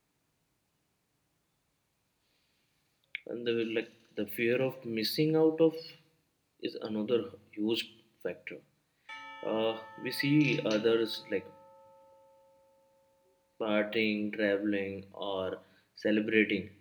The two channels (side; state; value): both; identical; correlation 1.00